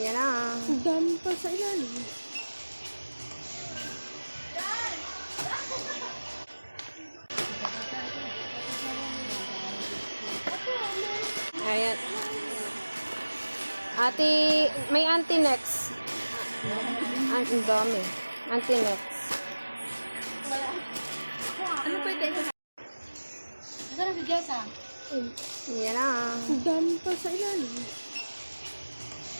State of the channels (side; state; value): both; inverted; correlation -1.00